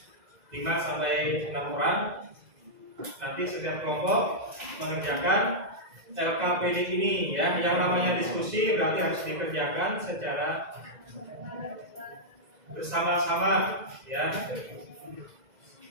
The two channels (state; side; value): late; left; 2.0 ms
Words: 5 sampai 6 orang. Nanti setiap kelompok mengerjakan LKPD ini, ya. Yang namanya diskusi berarti harus dikerjakan secara bersama-sama, ya.